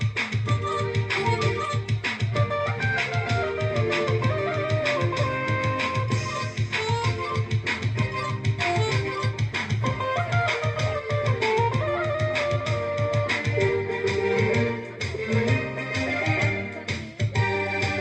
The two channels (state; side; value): identical; both; correlation 1.00